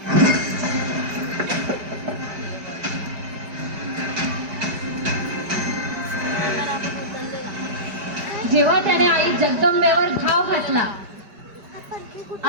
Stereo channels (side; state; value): left; late; 5.1 ms